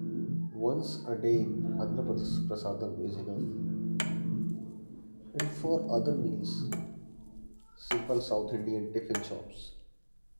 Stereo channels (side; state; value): both; inverted; correlation -1.00